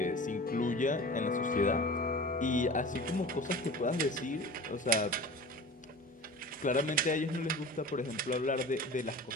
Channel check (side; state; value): both; normal; correlation 0.37